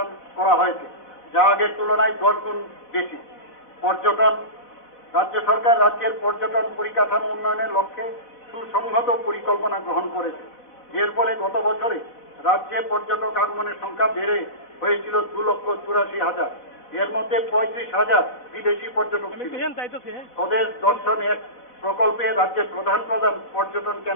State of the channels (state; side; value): late; right; 4.1 ms